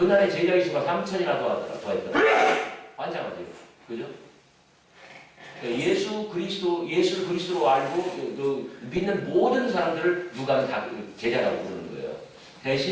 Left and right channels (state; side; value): identical; both; correlation 1.00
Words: 제자의 수가 3천이나 더했더라. 환장하죠. 그죠? 예수를 그리스도로 알고 믿는 모든 사람들을 누가는 다 제자라고 부르는 거예요.